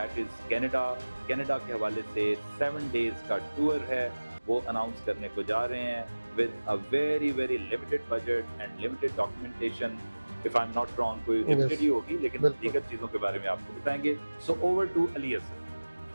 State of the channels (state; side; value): inverted; both; correlation -1.00